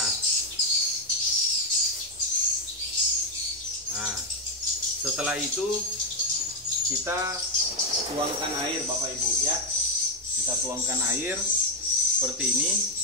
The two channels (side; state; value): both; normal; correlation 0.04